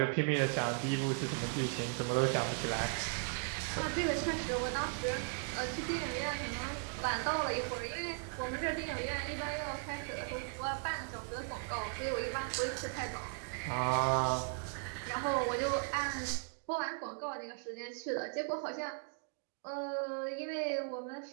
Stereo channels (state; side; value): quieter; left; 39.1 dB